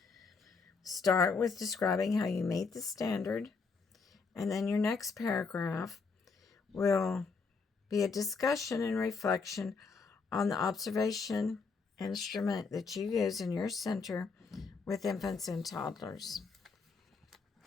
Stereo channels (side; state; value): right; quieter; 4.7 dB